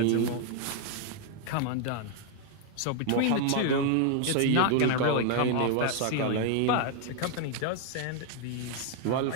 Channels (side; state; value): both; different; correlation 0.00